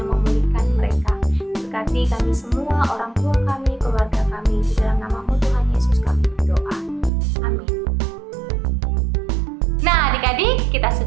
memulihkan mereka. Berkati kami semua, orang tua kami, keluarga kami. Di dalam nama-Mu Tuhan Yesus kami berdoa. Amin. Nah adik-adik, kita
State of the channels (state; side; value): drops out; left; at 7.1 s